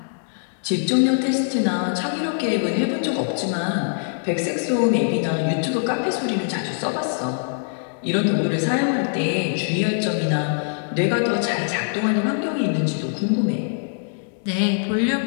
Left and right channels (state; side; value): silent; right; digital silence